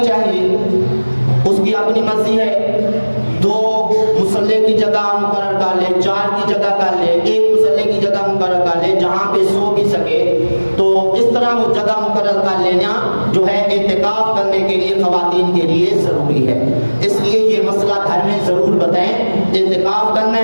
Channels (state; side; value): inverted; both; correlation -1.00